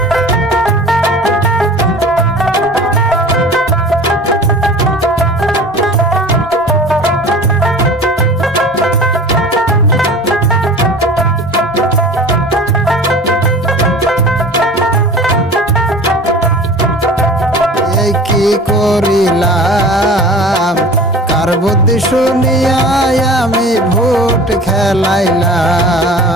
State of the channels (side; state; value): both; normal; correlation 0.40